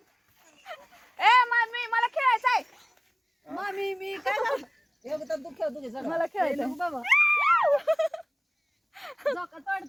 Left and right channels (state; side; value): identical; both; correlation 1.00